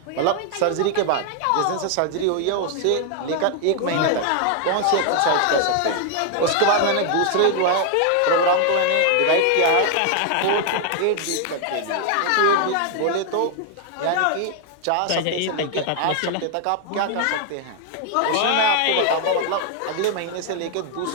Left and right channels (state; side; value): different; both; correlation 0.00